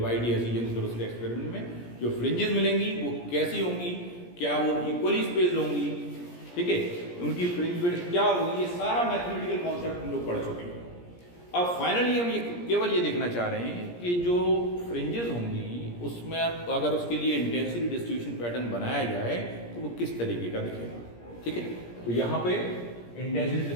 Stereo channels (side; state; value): right; late; 17 ms